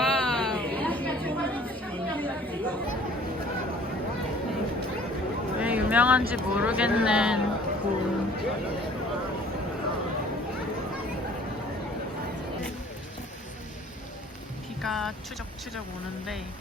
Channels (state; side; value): normal; both; correlation 0.52